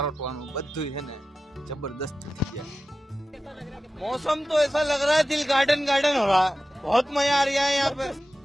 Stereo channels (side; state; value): both; normal; correlation 0.94